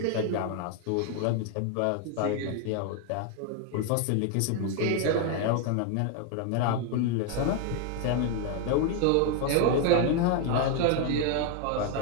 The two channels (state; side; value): different; both; correlation 0.01